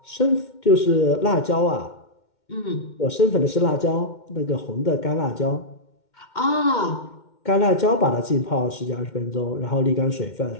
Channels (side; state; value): right; late; 2.1 ms